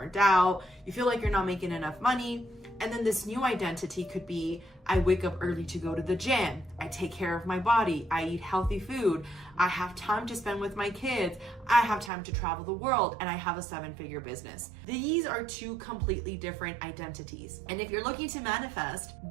out, you feel like you're not making enough money. And then this new identity could be, I wake up early to go to the gym, I take care of my body, I eat healthy food, I have time to spend with my kids, I have time to travel the world, and I have a 7-figure business. These are 2 completely different identities. And if you're looking to manifest,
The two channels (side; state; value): left; drops out; at 12.1 s